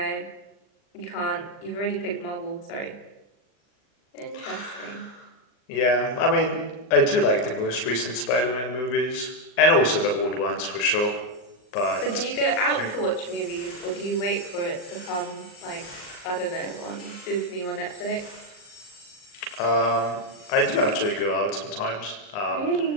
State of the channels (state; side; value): late; right; 39 ms